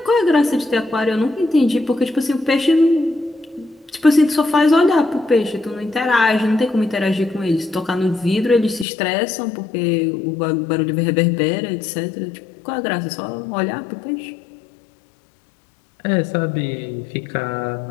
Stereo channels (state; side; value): drops out; right; at 8.8 s